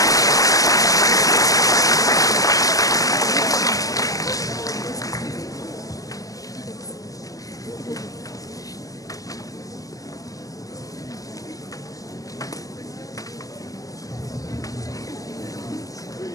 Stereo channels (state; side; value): late; right; 0.17 ms